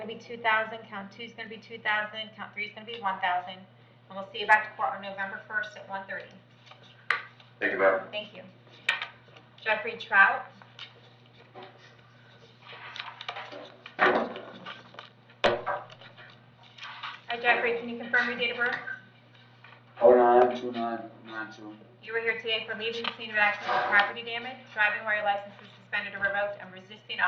be 2,000, count two's gonna be 2,000, count three's gonna be 1,000. And we'll see you back to court on November 1st at 1:30. Thank you, ma'am. Thank you. Jeffrey Trout. Hi Jeffrey, can you confirm your date of birth? 092992. You were here today for leaving the scene of accident with property damage, driving while your license is suspended or revoked, and resisting an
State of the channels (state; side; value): identical; both; correlation 1.00